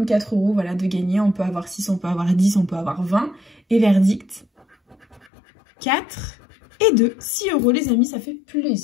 4 €, voilà, de gagner. On peut avoir 6, on peut avoir 10, on peut avoir 20. Et verdict, 4 et 2. 6 €, les amis, ça fait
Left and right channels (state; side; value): drops out; right; at 5.3 s